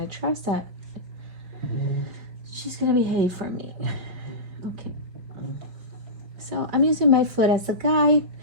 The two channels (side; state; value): left; late; 5.6 ms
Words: trust that she's gonna behave for me. Okay. So I'm using my foot as a guide.